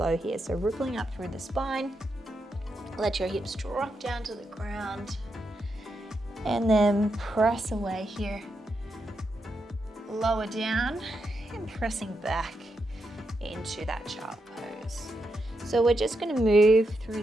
here. So rippling up through the spine. Let your hips drop down to the ground. And then press away here. Lower down and pressing back into that child pose. So we're just going to move through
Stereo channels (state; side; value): normal; both; correlation 0.84